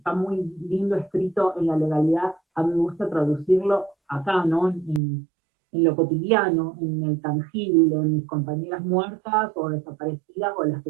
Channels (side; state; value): left; drops out; at 5.0 s